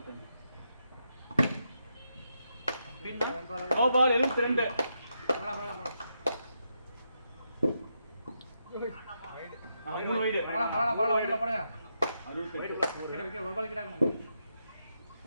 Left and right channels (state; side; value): inverted; both; correlation -0.83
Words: No ball 72. மூணு வைடு போடுங்க. 68. ஒரு பால் கிட்டாங்க.